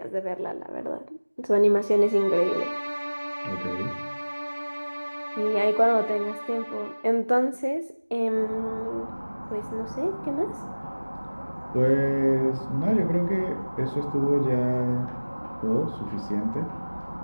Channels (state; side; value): inverted; both; correlation -1.00